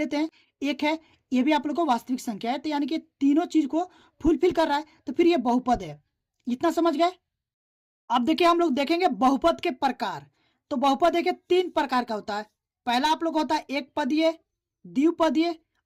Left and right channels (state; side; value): identical; both; correlation 1.00